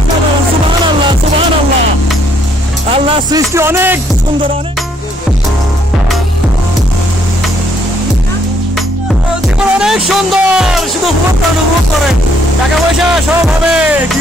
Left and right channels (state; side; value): normal; both; correlation 0.68